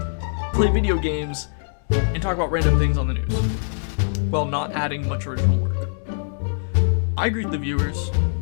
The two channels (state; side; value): silent; right; digital silence